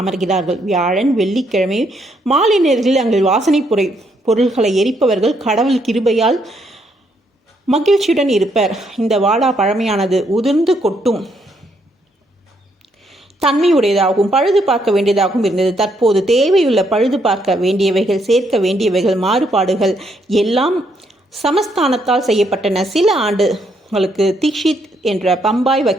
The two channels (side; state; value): both; normal; correlation 0.74